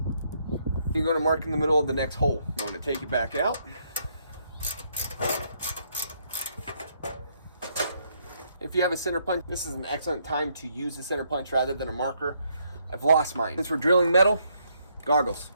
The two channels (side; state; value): both; inverted; correlation -0.73